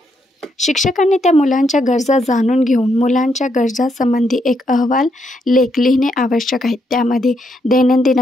शिक्षकांनी त्या मुलांच्या गरजा जाणून घेऊन मुलांच्या गरजांसंबंधी एक अहवाल लेख लिहिणे आवश्यक आहे. त्यामध्ये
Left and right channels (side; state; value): both; normal; correlation 0.77